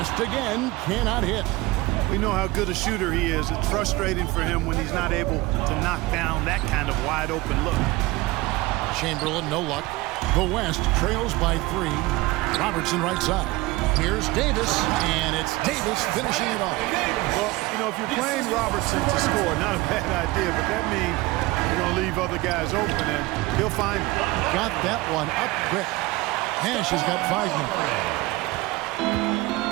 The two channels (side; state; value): left; quieter; 20.5 dB